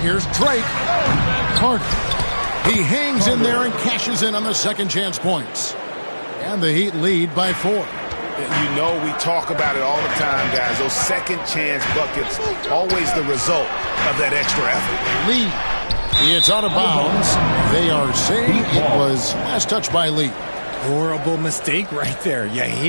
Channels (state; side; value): inverted; both; correlation -1.00